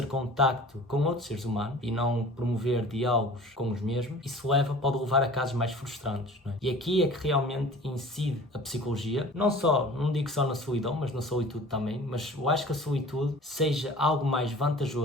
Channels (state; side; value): normal; both; correlation 0.44